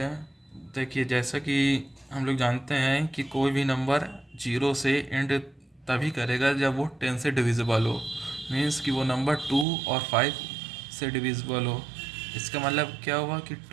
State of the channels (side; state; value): left; drops out; at 9.7 s